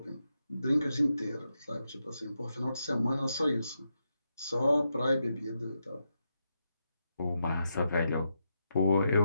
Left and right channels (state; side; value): inverted; both; correlation -0.85